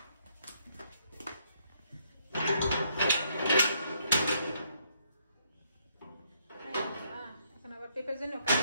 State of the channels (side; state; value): both; inverted; correlation -0.71